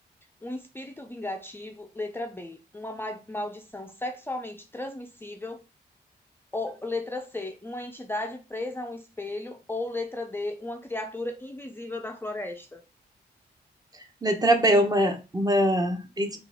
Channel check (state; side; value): normal; both; correlation 0.63